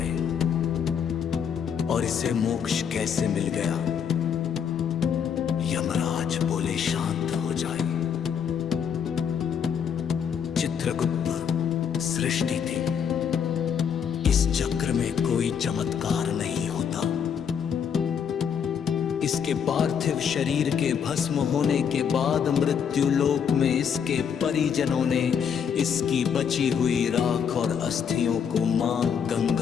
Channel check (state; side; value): quieter; right; 7.5 dB